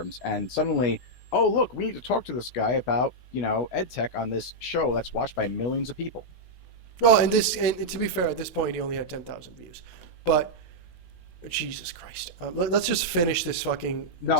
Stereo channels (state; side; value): late; right; 16 ms